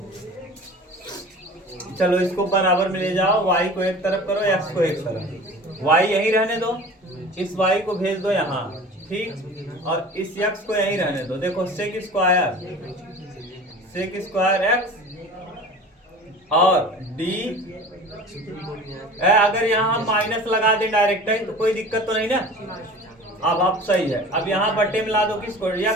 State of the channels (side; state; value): both; normal; correlation 0.40